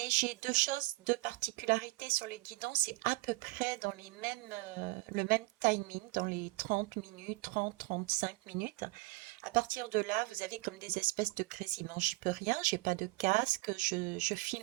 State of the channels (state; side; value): quieter; left; 22.2 dB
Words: j'ai deux choses, deux particularités sur les guidons, c'est à peu près dans les mêmes, le même timing, dans les 30 minutes, 30-35 minutes. À partir de là, vous avez comme des espèces de grésillements. J'y peux rien, j'ai pas de casque, je